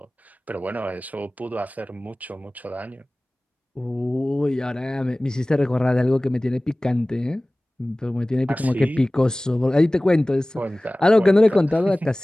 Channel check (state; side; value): normal; both; correlation 0.98